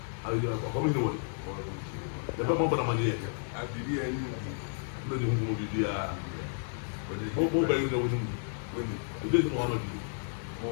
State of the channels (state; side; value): silent; right; digital silence